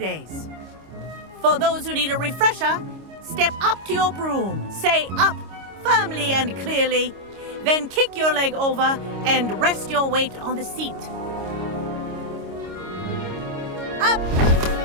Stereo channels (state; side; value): late; left; 26 ms